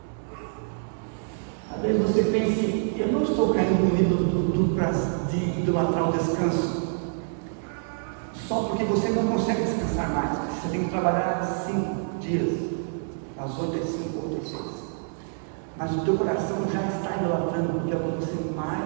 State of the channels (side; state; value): left; silent; digital silence